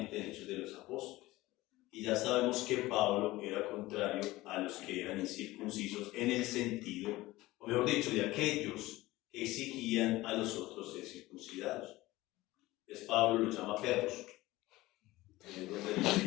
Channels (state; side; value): quieter; right; 18.5 dB